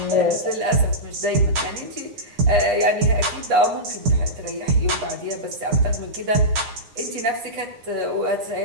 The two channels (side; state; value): left; late; 9.8 ms